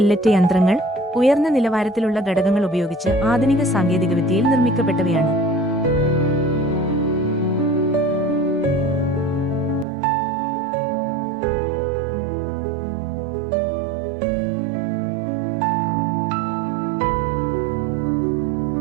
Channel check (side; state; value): left; drops out; at 9.9 s